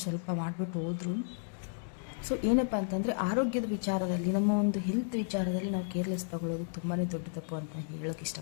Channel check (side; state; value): right; silent; digital silence